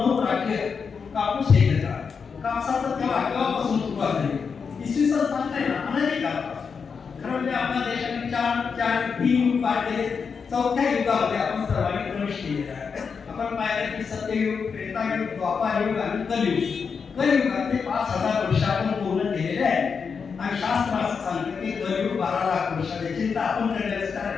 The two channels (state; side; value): quieter; right; 5.8 dB